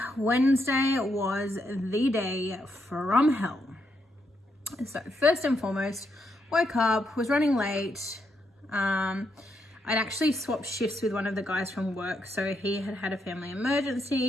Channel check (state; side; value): normal; both; correlation 0.79